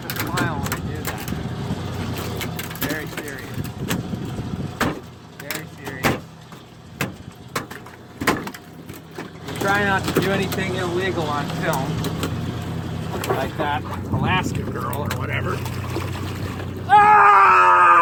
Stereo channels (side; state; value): both; identical; correlation 1.00